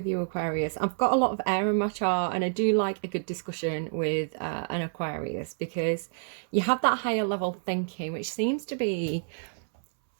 you, Aquarius. I've got a lot of air in my chart and I do like a good discussion with an Aquarius because you have that higher level thinking, which seems to be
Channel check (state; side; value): silent; left; 59 dB below the other